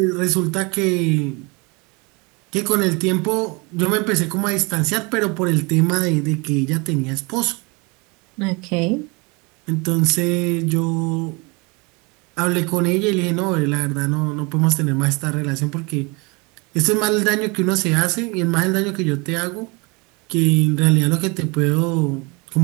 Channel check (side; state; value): left; quieter; 28.3 dB